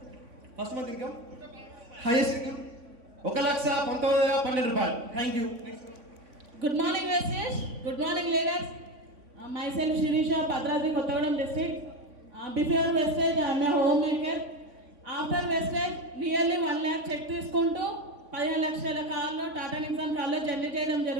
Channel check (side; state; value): left; late; 3.5 ms